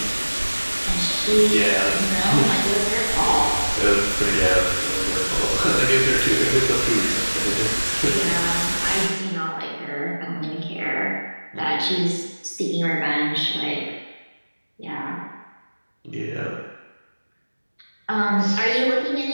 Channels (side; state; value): both; inverted; correlation -1.00